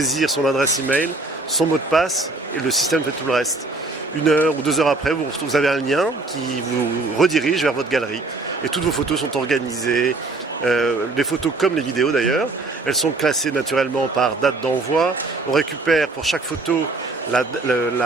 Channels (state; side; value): quieter; left; 3.3 dB